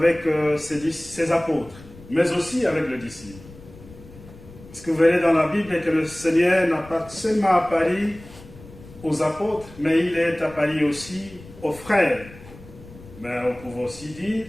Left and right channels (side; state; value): left; noise; rumble, 19 dB below the sound